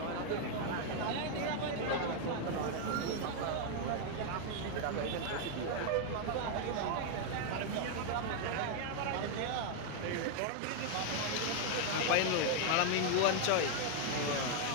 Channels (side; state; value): both; different; correlation 0.00